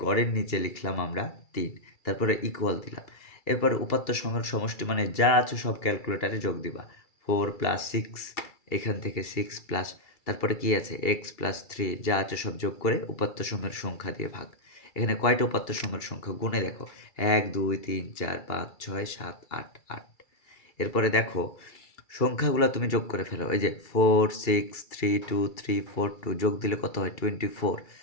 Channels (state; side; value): late; right; 2.3 ms